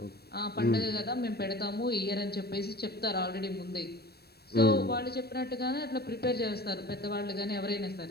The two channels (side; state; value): right; late; 0.47 ms